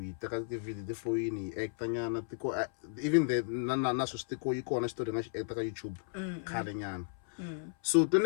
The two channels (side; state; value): right; silent; 55 dB below the other